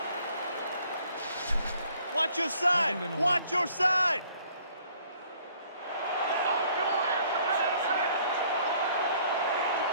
Watch your side! Watch your side!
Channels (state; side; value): inverted; both; correlation -0.60